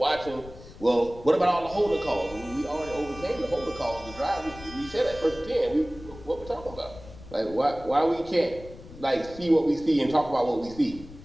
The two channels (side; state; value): left; noise; rumble, 17 dB below the sound